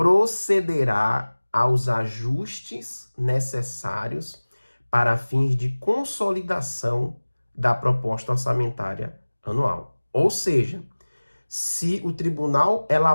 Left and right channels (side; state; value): both; inverted; correlation -1.00